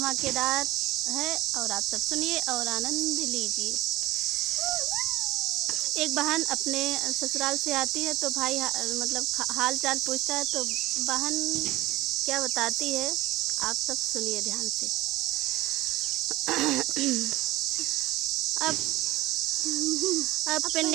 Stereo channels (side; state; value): left; quieter; 18.1 dB